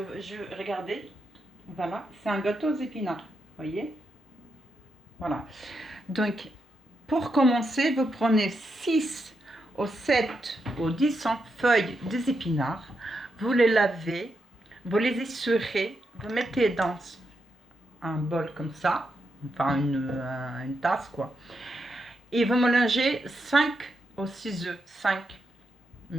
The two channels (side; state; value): both; normal; correlation 0.83